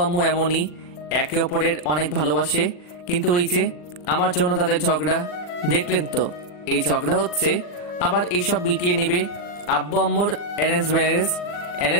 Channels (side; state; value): right; late; 40 ms